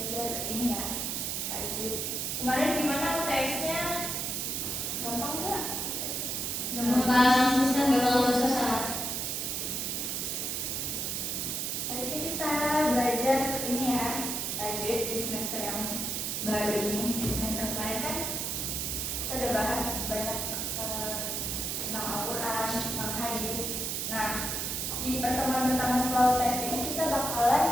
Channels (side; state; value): right; noise; hiss, 1 dB below the sound